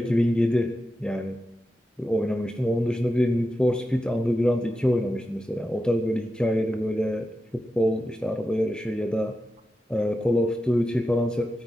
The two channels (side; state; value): both; normal; correlation 0.90